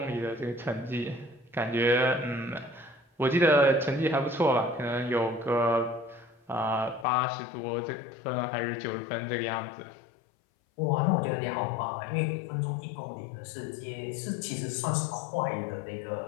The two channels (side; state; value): right; drops out; at 7.1 s